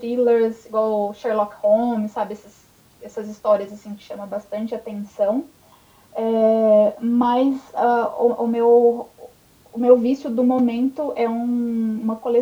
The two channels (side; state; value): both; identical; correlation 1.00